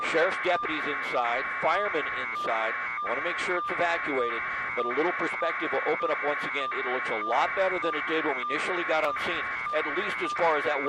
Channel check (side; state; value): both; identical; correlation 1.00